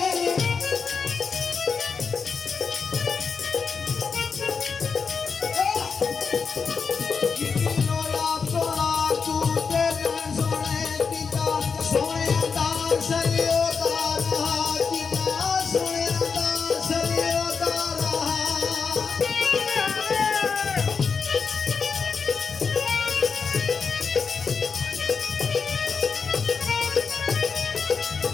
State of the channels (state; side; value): quieter; right; 5.5 dB